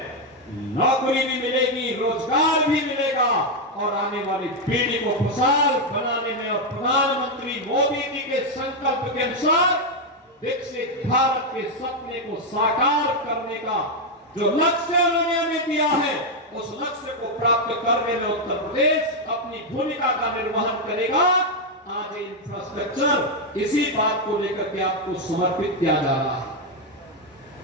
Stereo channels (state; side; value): normal; both; correlation 0.02